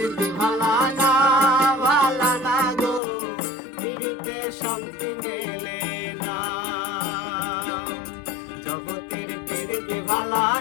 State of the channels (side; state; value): right; drops out; at 3.0 s